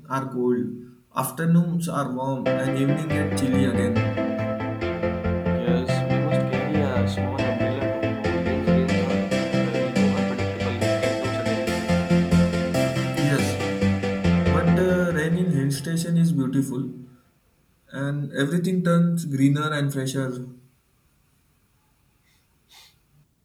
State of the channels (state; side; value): identical; both; correlation 1.00